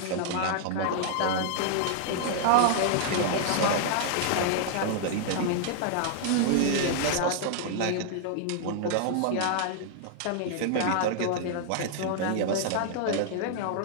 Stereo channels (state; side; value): different; both; correlation -0.01